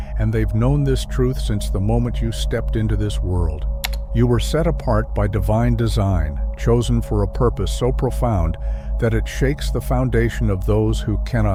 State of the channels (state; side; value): identical; both; correlation 1.00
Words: and they've known this truth since the moment you stepped into this world. You were set apart by divine design, chosen for a purpose so profound that it shakes the foundation of those who